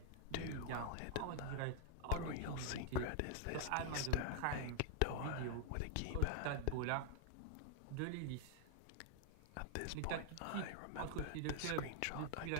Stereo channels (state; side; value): different; both; correlation 0.00